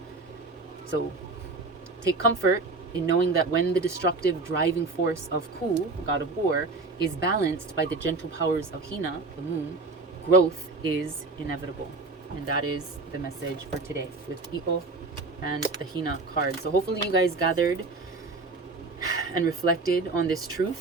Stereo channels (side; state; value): left; quieter; 3.6 dB